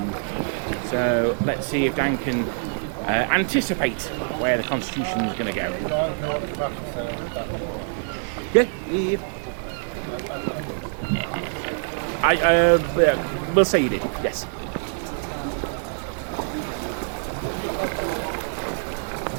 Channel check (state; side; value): silent; left; digital silence